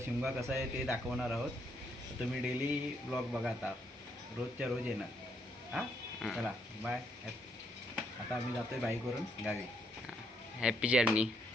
शिमगा कसा आहे ते दाखवणार आहोत. तर तुम्ही डेली ब्लॉग बघा आता, रोजच्या रोज येणार. हां, चला बाय. आता आम्ही जातो आहे बाईकवरून गावी. Happy journey.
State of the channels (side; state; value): both; normal; correlation 0.74